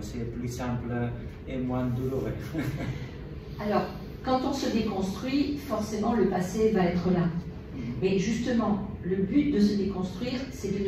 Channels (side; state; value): both; identical; correlation 1.00